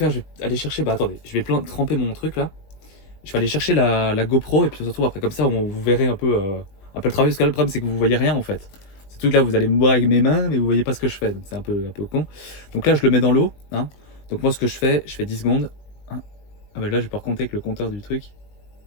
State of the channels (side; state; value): right; late; 19 ms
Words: je vais aller chercher... Bah, attendez. Je vais tremper mon truc, là. Je vais aller chercher la GoPro et puis on se retrouve après. Comme ça, vous verrez un peu le travail. Parce que là, le problème, c'est que vous voyez rien en fait. Ce truc là, vous allez me voir avec mes mains, mais vous voyez pas ce que je fais. Donc c'est un peu con. Donc là, je le mets dans l'eau. Hein. Donc moi, ce que je fais 10 secondes. Hein. Ah bah là, je vais pouvoir compter avec le compteur du truc.